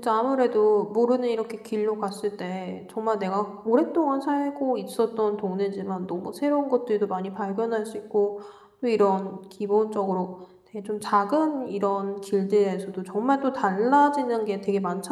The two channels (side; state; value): both; identical; correlation 1.00